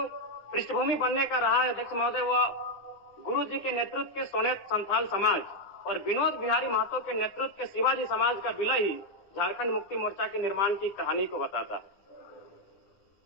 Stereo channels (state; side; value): late; right; 9.8 ms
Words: पृष्ठभूमि बनने का रहा है, अध्यक्ष महोदय, वह गुरु जी के नेतृत्व के सोनेत संथाल समाज और विनोद बिहारी महतो के नेतृत्व के शिवाजी समाज का विलय ही झारखंड मुक्ति मोर्चा के निर्माण की कहानी को बताता है।